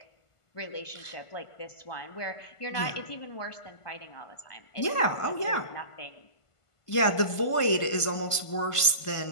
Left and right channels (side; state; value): right; late; 1.5 ms